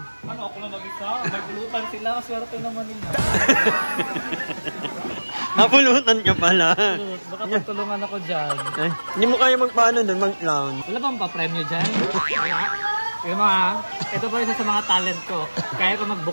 Ano, ako lang mag-isa? Nagulutan sila. Swerte naman nila. Napulutan ka pala. Baka pagtulungan ako dyan. Eh, hindi mo kaya magpaano doon, mag-clown. Wala bang pa-premyo dyan? Yung mga, ito pa isa sa mga talent ko. Kaya ko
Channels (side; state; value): both; inverted; correlation -1.00